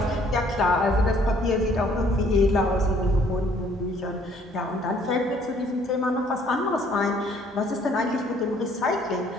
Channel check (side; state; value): both; normal; correlation 0.61